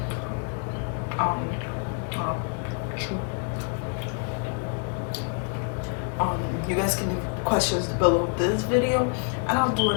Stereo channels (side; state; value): right; quieter; 39.1 dB